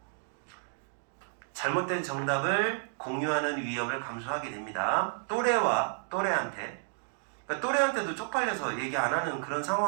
잘못된 정답을 공유하는 위험을 감수하게 됩니다. 또래한테 그러니까 또래한테도 쪽팔려서 얘기 안 하는 그런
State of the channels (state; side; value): silent; left; digital silence